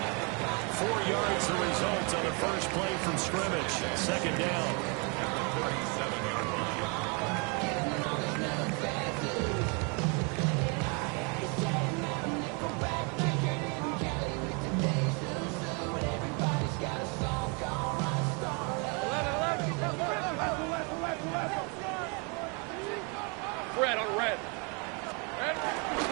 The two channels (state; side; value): quieter; left; 33.7 dB